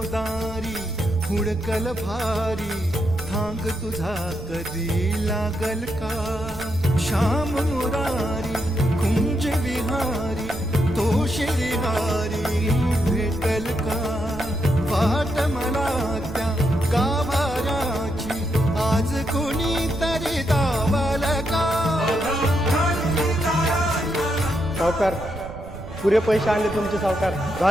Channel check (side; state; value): right; noise; rumble, 12 dB below the sound